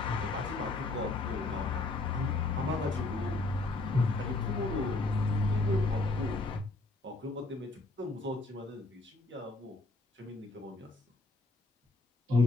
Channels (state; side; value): quieter; right; 3.1 dB